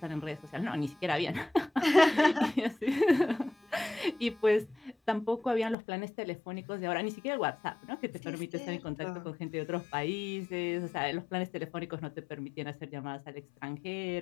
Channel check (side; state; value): right; drops out; at 5.8 s